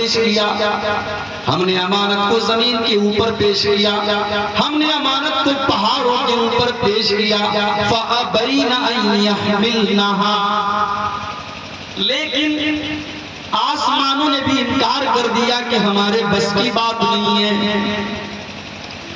کیا، ہم نے امانت کو زمین کے اوپر پیش کیا، ہم نے امانت کو پہاڑوں کے اوپر پیش کیا۔ فَأَبَيْنَ أَن يَحْمِلْنَهَا، لیکن آسمانوں نے بھی انکار کر دیا کہ ہمارے بس کی بات نہیں ہے،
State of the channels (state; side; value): identical; both; correlation 1.00